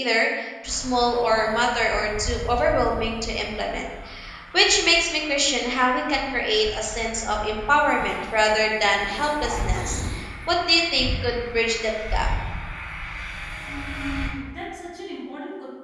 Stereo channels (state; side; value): identical; both; correlation 1.00